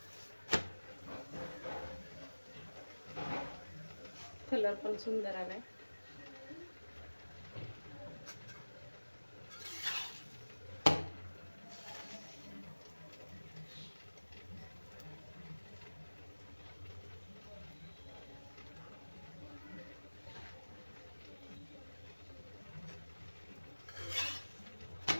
कलर पण सुंदर आलाय.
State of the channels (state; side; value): inverted; both; correlation -1.00